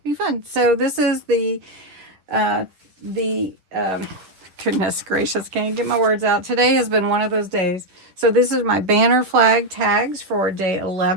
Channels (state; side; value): late; left; 10 ms